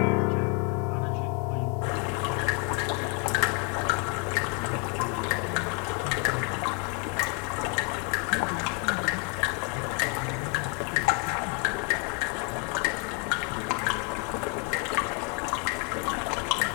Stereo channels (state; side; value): quieter; right; 36.0 dB